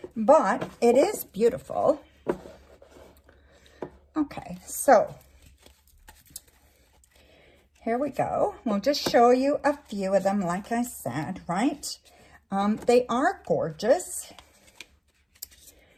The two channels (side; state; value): both; identical; correlation 1.00